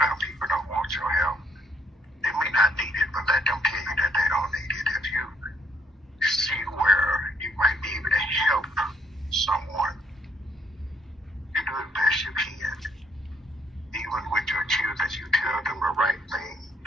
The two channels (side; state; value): both; normal; correlation 0.70